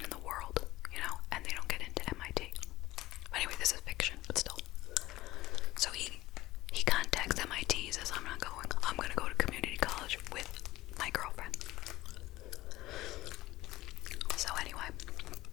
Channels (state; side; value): quieter; right; 17.4 dB